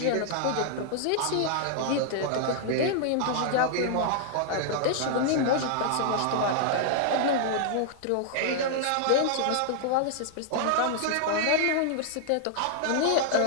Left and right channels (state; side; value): different; both; correlation -0.01